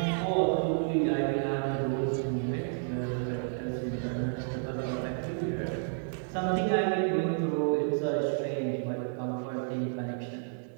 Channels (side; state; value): left; silent; digital silence